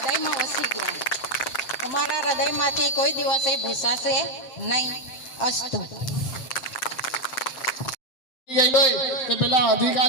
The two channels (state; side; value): late; right; 7.7 ms